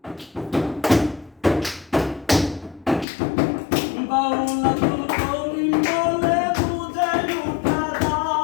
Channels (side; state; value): right; drops out; at 3.1 s